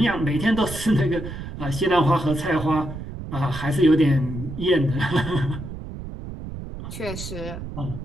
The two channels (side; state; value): right; noise; rumble, 9 dB below the sound